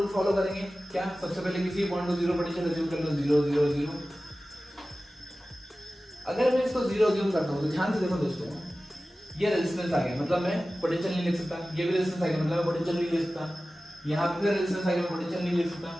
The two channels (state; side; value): normal; both; correlation 0.96